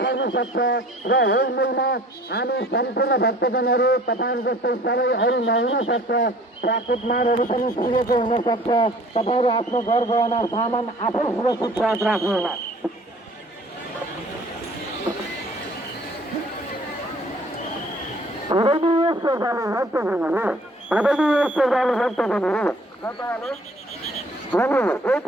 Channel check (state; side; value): normal; both; correlation 0.52